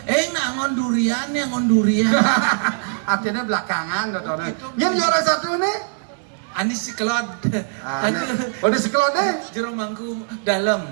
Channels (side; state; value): left; silent; digital silence